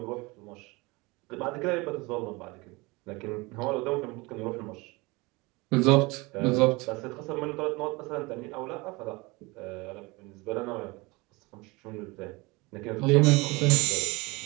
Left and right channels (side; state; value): left; quieter; 24.5 dB